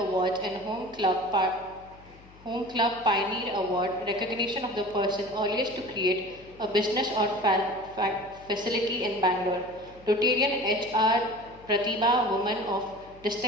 awards and Home Club Pioneer Award, recognition of the person earliest to create a business or facility in Bangalore. Rotarian HR Pratibha Woman of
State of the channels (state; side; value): noise; left; hum, 23 dB below the sound